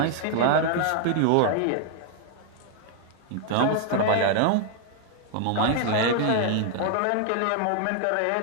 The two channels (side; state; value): both; different; correlation 0.00